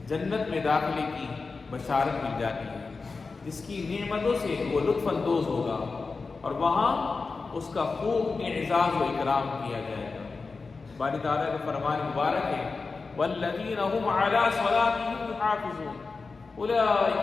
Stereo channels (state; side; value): quieter; right; 4.3 dB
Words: جنت میں داخلے کی بشارت مل جاتی ہے، جس کی نعمتوں سے وہ لطف اندوز ہوگا اور وہاں اس کا خوب اعزاز و اکرام کیا جائے گا. باری تعالیٰ کا فرمان مبارک ہے: والذین هم علی صلاتهم یحافظون اولئک